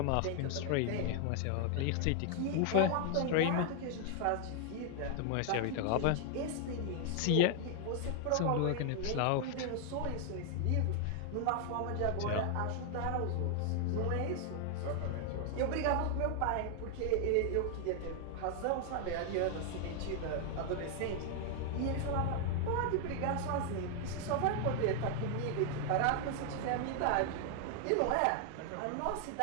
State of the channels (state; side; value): different; both; correlation 0.00